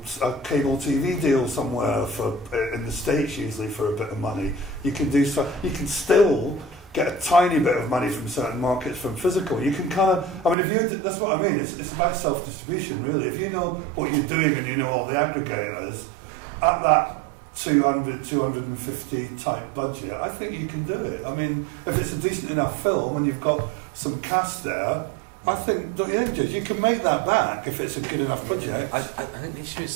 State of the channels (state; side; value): drops out; left; at 10.6 s